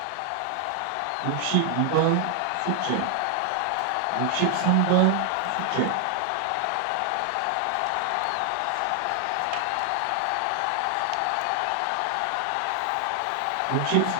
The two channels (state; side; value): different; both; correlation 0.00